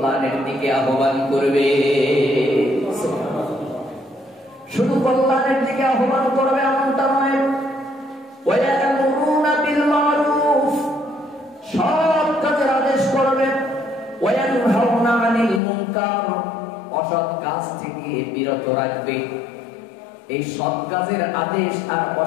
দিকে আহ্বান করবে। শুধু কল্যাণের দিকে আহ্বান করবে এমনটা নয়, ওয়ায়ামুরুনা বিল মারুফ, সৎ কাজের আদেশ করবে, ওয়ায়ানহাউনা আনিল মুনকার, অসৎ কাজ থেকে বিরত রাখবে। এই সৎ কাজের আদেশ আর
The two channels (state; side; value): drops out; right; at 15.6 s